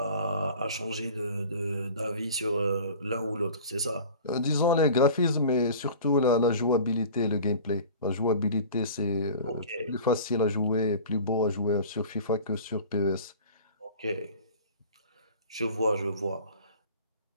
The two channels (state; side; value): inverted; both; correlation -0.41